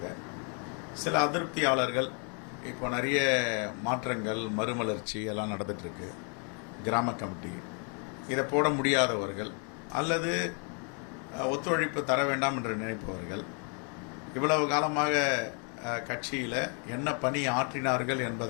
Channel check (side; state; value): right; quieter; 39.3 dB